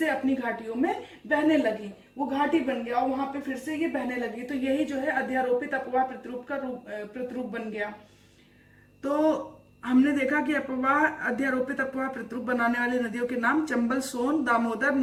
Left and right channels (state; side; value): identical; both; correlation 1.00